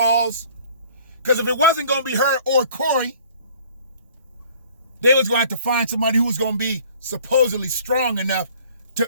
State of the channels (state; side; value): inverted; both; correlation -0.52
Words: Because if it wasn't going to be her or Corey, they was going to have to find somebody who was going to be supposedly strong enough